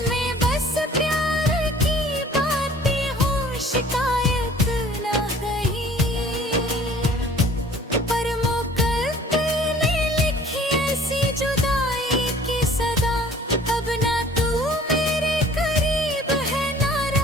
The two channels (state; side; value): normal; both; correlation 0.51